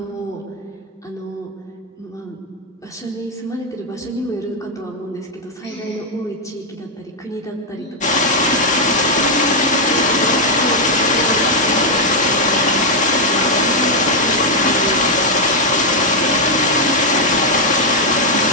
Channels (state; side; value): normal; both; correlation -0.01